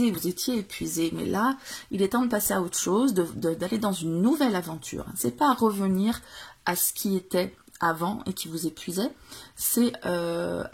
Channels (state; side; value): identical; both; correlation 1.00